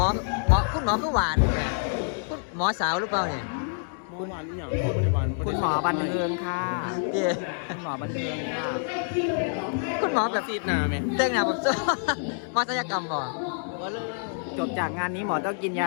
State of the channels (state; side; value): silent; right; 60 dB below the other